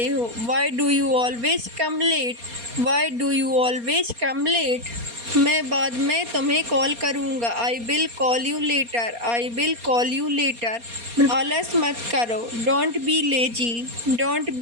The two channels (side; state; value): left; late; 4.3 ms